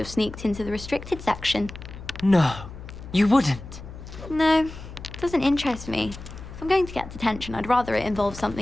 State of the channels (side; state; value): left; noise; hum, 13 dB below the sound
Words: sneaked into the restricted section. No, you wouldn't. No, it doesn't interest me. If I'm going to get detention, I'd rather it involve